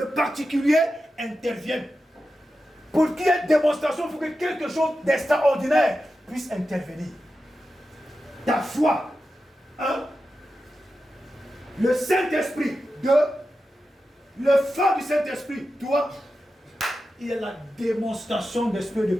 particulier intervienne. Pour qu'il y ait démonstration, il faut que quelque chose d'extraordinaire puisse intervenir. Ta foi, le Saint-Esprit, le feu du Saint-Esprit, toi, il y a la démonstration d'esprit de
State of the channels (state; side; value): normal; both; correlation 0.91